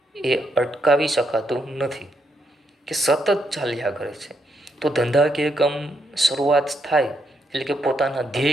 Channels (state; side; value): normal; both; correlation 0.78